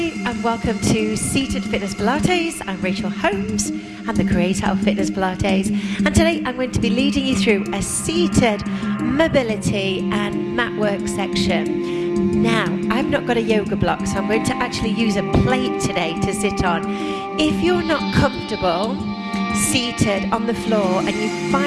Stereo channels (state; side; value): identical; both; correlation 1.00